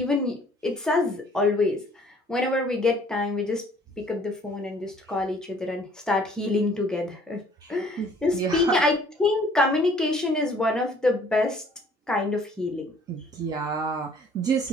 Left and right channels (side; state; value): both; normal; correlation 0.57